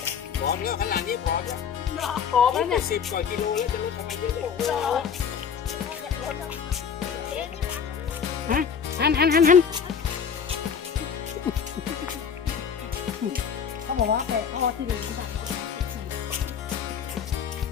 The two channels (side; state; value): right; quieter; 7.0 dB